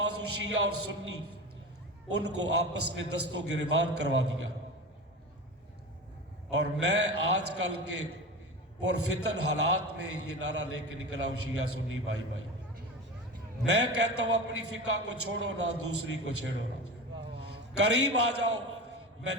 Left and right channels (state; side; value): normal; both; correlation 0.28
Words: شیعہ اور سنی، ان کو آپس میں دست و گریبان کروا دیا. اور میں آج کل کے پرفتن حالات میں یہ نعرہ لے کے نکلا ہوں، شیعہ سنی بھائی بھائی. میں کہتا ہوں اپنی فقہ کو چھوڑو نہ، دوسری کو چھیڑو نہ. قریب آ جاؤ. میں